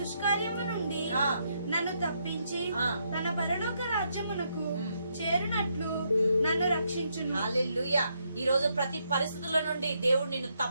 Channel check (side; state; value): both; inverted; correlation -0.77